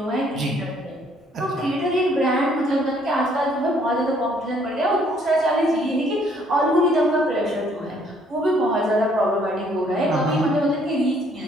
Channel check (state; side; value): normal; both; correlation 0.64